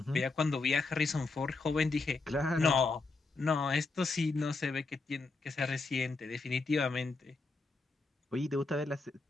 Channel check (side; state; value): right; quieter; 3.7 dB